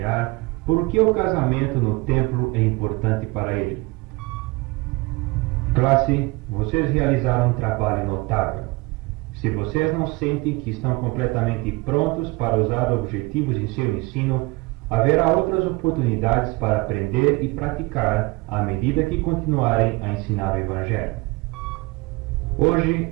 por que o casamento no templo é importante para ele. Classe, vocês realizaram um trabalho notável. Se vocês não sentem que estão completamente prontos para usar objetivos em seu ensino, haverá outras oportunidades para aprender e praticar à medida que continuarem a ensinar o Evangelho. Hoje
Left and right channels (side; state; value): left; quieter; 24.2 dB